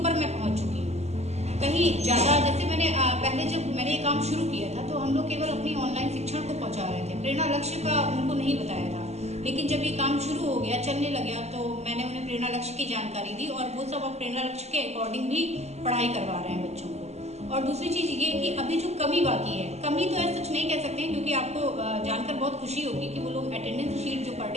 मैं पहुंच चुकी हूँ, कहीं ज़्यादा। जैसे मैंने पहले जब मैंने ये काम शुरू किया था, तो हम लोग केवल अपनी ऑनलाइन शिक्षण को पहुंचा रहे थे, प्रेरणा लक्ष्य का उनको नहीं बताया था। लेकिन जब ये काम शुरू हो गया, चलने लग गया, तो मैंने उन्हें प्रेरणा लक्ष्य की जानकारी दी, और वो सब अब प्रेरणा लक्ष्य के अकॉर्डिंग भी पढ़ाई करवा रहे हैं बच्चों को। और दूसरी चीज़ ये कि अभी जो कमी बाकी है, कमी तो ऐसा सच नहीं कह सकते हैं, क्योंकि आपको जानकर बहुत खुशी होगी कि वो लोग अटेंडेंस शीट जो पर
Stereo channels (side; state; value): left; late; 0.32 ms